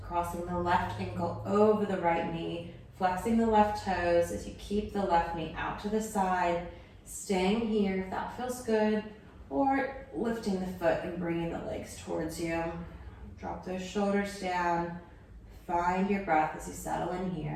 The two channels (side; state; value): both; identical; correlation 1.00